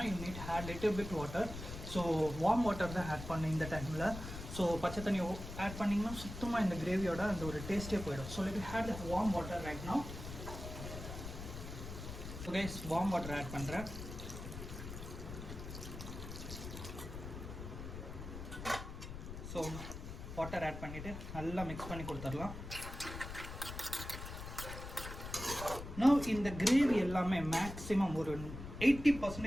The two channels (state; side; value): noise; left; rumble, 9 dB below the sound